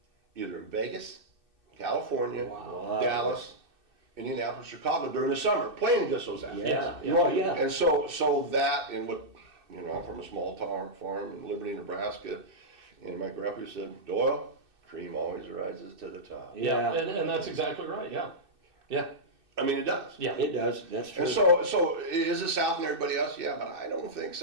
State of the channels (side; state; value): left; late; 2.6 ms